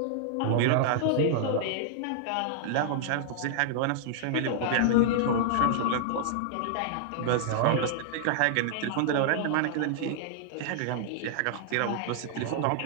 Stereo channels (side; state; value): both; different; correlation -0.01